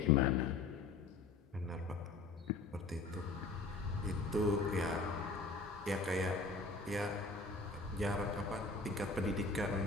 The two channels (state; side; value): quieter; right; 3.8 dB